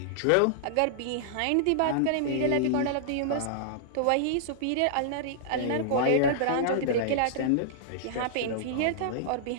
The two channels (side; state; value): both; different; correlation -0.01